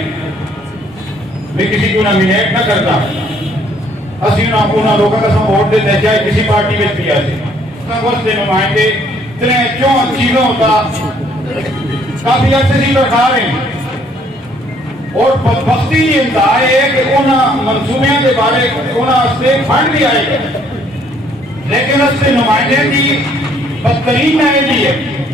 میں کسی کو نامینیٹ نہ کرتا اسی انہوں لوگوں کا ووٹ دیتے ہیں چاہے کسی پارٹی میں بھی آتے سے نمائندے اتنے چون چیزوں کا کافی عرصے سے رکھا رہے ہیں اور بدبختی یہ انتہا ہے کہ انہوں منصوبیاں کے بارے انہوں سے فنڈ بھی آئے گا لیکن اس سے نمائندے کی بدترین نائدی ہے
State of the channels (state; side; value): normal; both; correlation 0.64